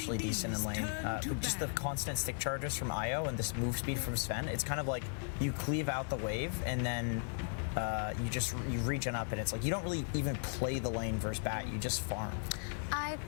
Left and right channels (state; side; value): silent; right; 53 dB below the other